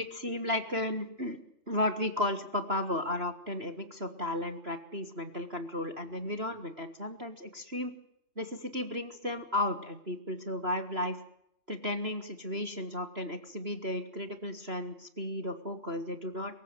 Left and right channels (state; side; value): late; left; 3.0 ms